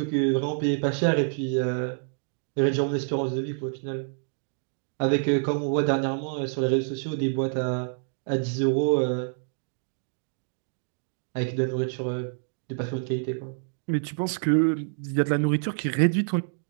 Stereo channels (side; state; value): left; silent; digital silence